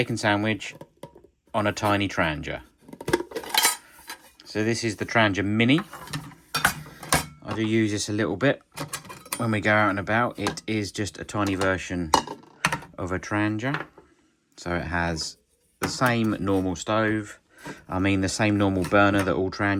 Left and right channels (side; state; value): both; identical; correlation 1.00